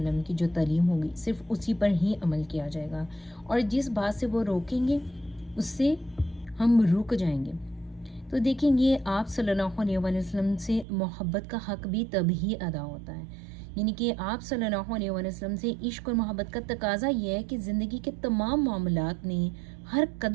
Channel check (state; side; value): drops out; left; at 10.9 s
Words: کی جو تعلیم ہوگی صرف اسی پر ہی عمل کیا جائے گا، اور جس بات سے وہ روکیں گے اس سے ہم رک جائیں گے۔ تو دیکھیں گے آپ صلی اللہ علیہ وآلہ وسلم سے محبت کا حق بھی تب ہی ادا ہوتا ہے، یعنی کہ آپ صلی اللہ علیہ وآلہ وسلم سے عشق اور محبت کا تقاضا یہ ہے کہ زندگی کے تمام معاملات میں ہر